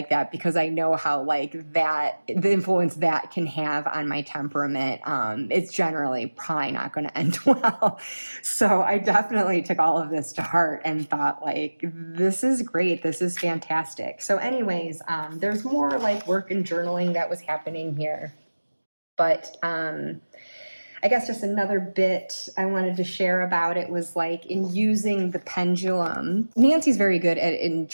that, because I know how like that, the influence that can have on my temperament. It's generally probably not going to end well. So I definitely took all of this to heart and thought like, this is great. This is fantastic. So anyways, there's more like work and journaling that was happening here. But I guess just another bit I wanted to share about it was like in using the pendulum. Nancy's very good at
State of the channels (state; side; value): inverted; both; correlation -1.00